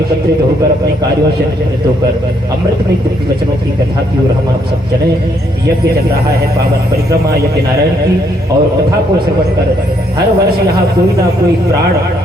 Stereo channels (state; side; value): normal; both; correlation 0.71